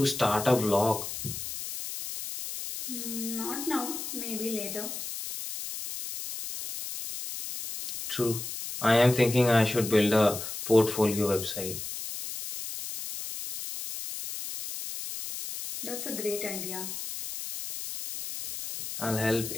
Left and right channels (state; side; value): noise; left; hiss, 7 dB below the sound